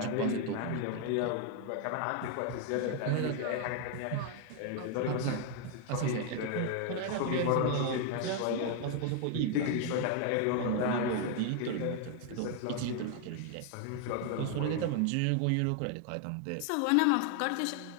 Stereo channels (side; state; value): both; different; correlation 0.00